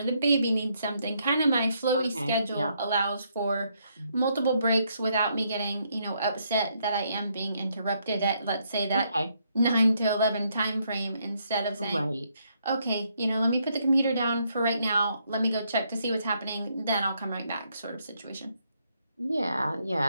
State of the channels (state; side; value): inverted; both; correlation -0.74